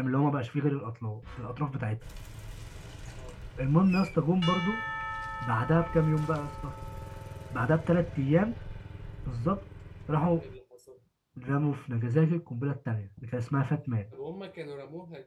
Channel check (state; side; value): identical; both; correlation 1.00